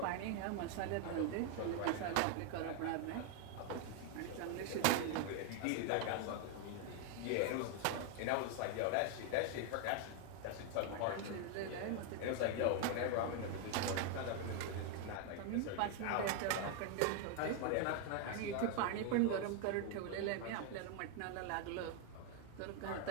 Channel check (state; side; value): different; both; correlation 0.01